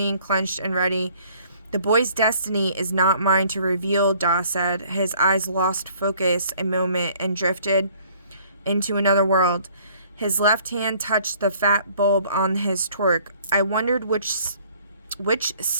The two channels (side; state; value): both; inverted; correlation -0.58